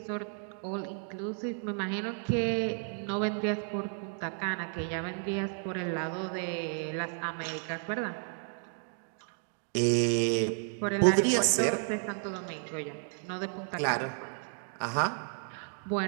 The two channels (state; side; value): silent; left; 56 dB below the other